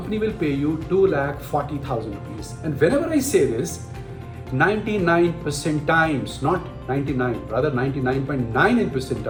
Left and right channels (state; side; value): identical; both; correlation 1.00